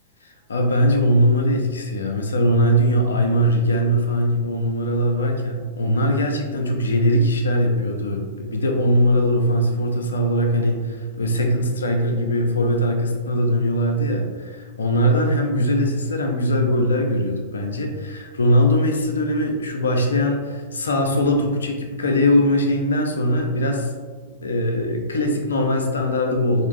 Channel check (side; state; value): both; inverted; correlation -0.49